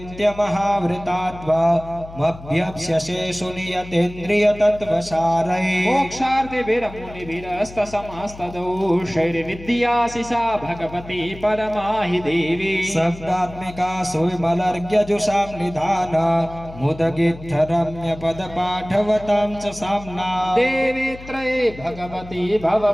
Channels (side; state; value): left; noise; hum, 16 dB below the sound